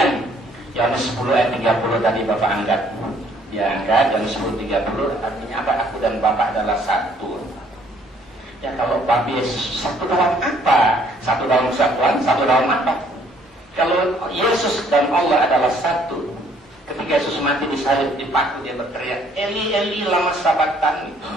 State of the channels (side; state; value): both; normal; correlation 0.62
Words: Yohanes 10 ayat 30 tadi Bapak angkat, dia angkat Yohanes 10:30 artinya apa? Aku dan Bapak adalah satu. Ya kalau Bapak Yesus satu dalam apa? Satu dalam kesatuan, satu dalam apa? Kalau Yesus dan Allah adalah satu, Ketika Yesus mati disalib, dipaku, dia berteriak, Eli, Eli, lama sabachthani.